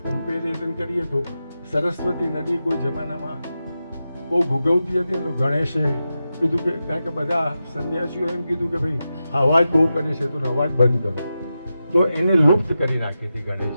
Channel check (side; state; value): both; inverted; correlation -0.91